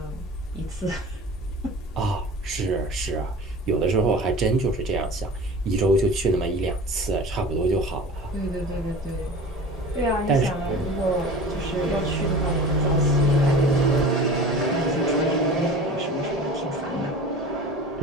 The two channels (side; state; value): both; normal; correlation 0.38